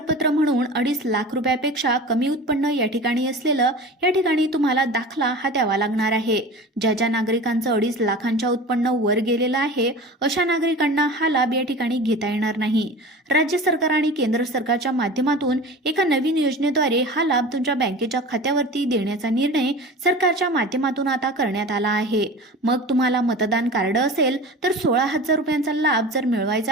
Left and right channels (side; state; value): both; normal; correlation 0.35